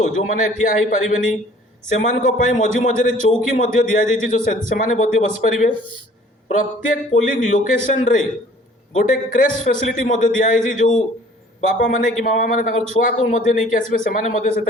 जो माने ठिया हेई परिबेनी सेमान को पई मझी मझी रे चौकी मध्य दिया जाईची जो से माने मध्य बस परिबे प्रत्येक पोलिंग लोकेशन रे गोटे क्रेश फैसिलिटी मध्य दिया है जो बापा माने कि मामा माने ताकर छुआ को मध्य नहीं कि आसबे से माने मध्य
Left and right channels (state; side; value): normal; both; correlation 0.53